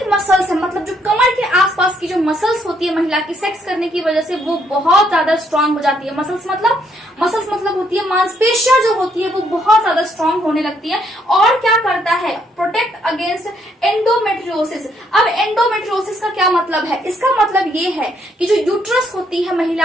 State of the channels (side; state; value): both; normal; correlation 0.71